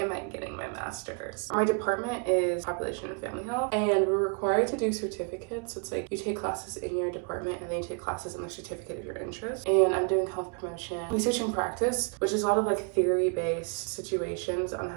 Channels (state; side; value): quieter; left; 35.6 dB